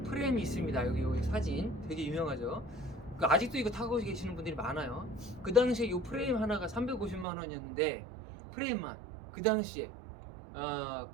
프레임이 있습니다. 여기 사진 되게 유명하죠. 그 아직도 이거 타고 계시는 분들이 많아요. 그 당시에 이 프레임 하나가 350만 원이었는데 프레임만 그 당시에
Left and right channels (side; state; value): left; drops out; at 7.2 s